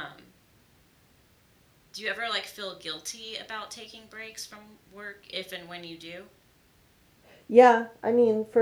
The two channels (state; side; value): identical; both; correlation 1.00